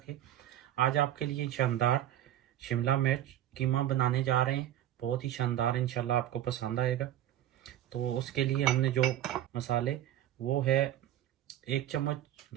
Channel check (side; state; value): left; quieter; 12.3 dB